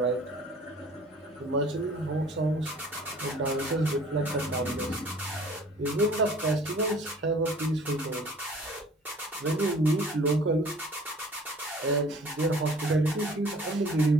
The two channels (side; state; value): both; normal; correlation 0.51